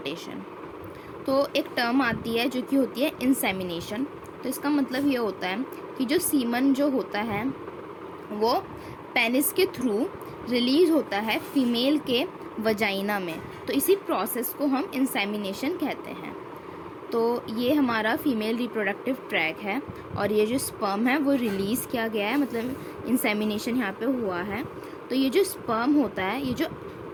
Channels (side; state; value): both; identical; correlation 1.00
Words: तो एक term आती है जो कि होती है इंसेमिनेशन। तो इसका मतलब ये होता है कि जो सीमन जो होता है वो पेनिस के थ्रू रिलीज होता है फीमेल के वजाइना में। तो इसी प्रोसेस को हम इंसेमिनेशन कहते हैं। तो ये हमारा फीमेल रिप्रोडक्टिव ट्रैक है और ये जो स्पर्म है वो रिलीज़ किया गया है, मतलब इंसेमिनेशन यहाँ पे हुआ है। तो ये जो स्पर्म होता है, ये जो